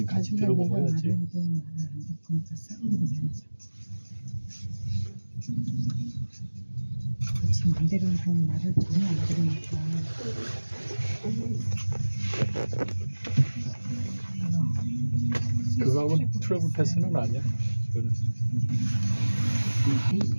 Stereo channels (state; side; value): inverted; both; correlation -1.00